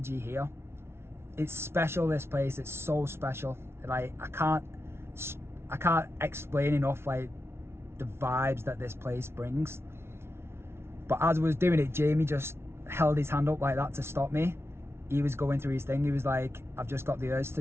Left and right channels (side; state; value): left; late; 0.12 ms